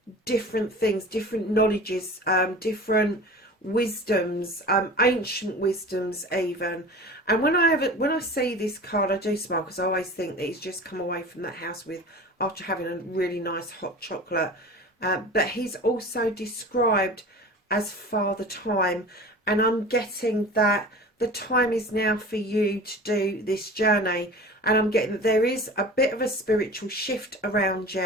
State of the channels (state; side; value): normal; both; correlation 0.38